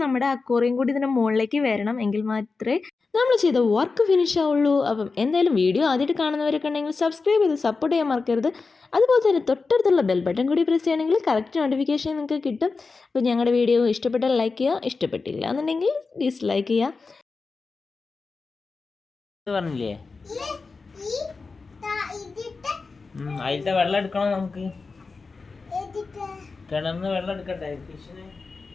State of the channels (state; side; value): quieter; right; 4.3 dB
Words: നമ്മുടെ അക്വേറിയം കൂടി ഇതിൻ്റെ മുകളിലേക്ക് വരണം, എങ്കിൽ മാത്രമേ നമ്മൾ ചെയ്ത വർക്ക് ഫിനിഷ് ആവുള്ളൂ. അപ്പം എന്തായാലും വീഡിയോ ആദ്യമായിട്ട് കാണുന്നവരൊക്കെ ഉണ്ടെങ്കിൽ സബ്സ്ക്രൈബ് ചെയ്ത് സപ്പോർട്ട് ചെയ്യാൻ മറക്കരുത്. അതുപോലെ തന്നെ തൊട്ടടുത്തുള്ള ബെൽ ബട്ടൺ കൂടി പ്രസ് ചെയ്യുകയാണെങ്കിൽ കറക്റ്റ് നോട്ടിഫിക്കേഷൻ നിങ്ങൾക്ക് കിട്ടും. അപ്പോൾ ഞങ്ങളുടെ വീഡിയോ ഇഷ്ടപ്പെട്ടാൽ ലൈക്ക് ചെയ്യുക, ഇഷ്ടപ്പെട്ടില്ല എന്നുണ്ടെങ്കിൽ ഡിസ്ലൈക്ക് ചെയ്യുക. പറഞ്ഞില്ലേ അതിലത്തെ വെള്ളം എടുക്കണം, നമുക്ക് കിണറിന് വെള്ളം എടുക്കട്ടെ ഫിഷിന്.